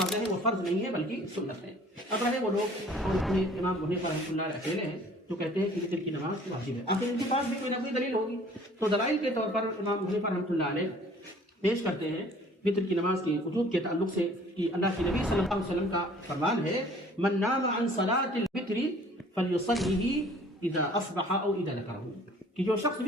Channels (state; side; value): normal; both; correlation 0.52